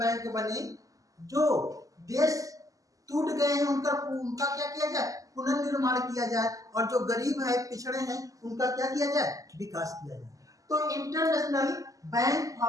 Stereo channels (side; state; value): left; late; 0.17 ms